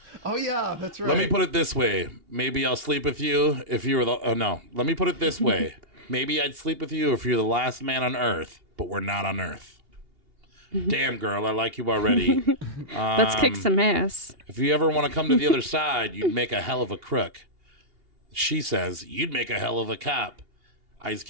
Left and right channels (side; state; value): left; late; 2.8 ms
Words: Oh, yeah, that's right. Let me put it this way. Maybe I'll sleep with you if you were the... Oh, no. Let me put it this way. Maybe I'd sleep with you if you're the last man on Earth, but we're not on Earth. Damn, girl, I like you already. Let's kick some ass. If you ever want to come to the other side, you'd make a hell of a crook. She says, you'd make a hell of a cop. Ice